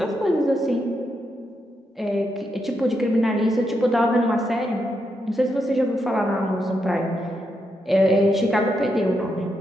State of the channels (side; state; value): both; normal; correlation 0.82